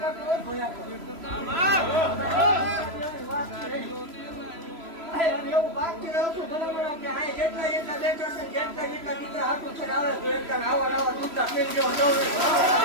એવું બાકી રહું છું બરાબર કે આ જેટલા જેટલા બેઠા છે જેટલા જેટલા દીકરા હાથું છે આવે તો એકદમ આવા નવા દૂધના પેન જેવો દોડે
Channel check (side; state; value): left; late; 3.0 ms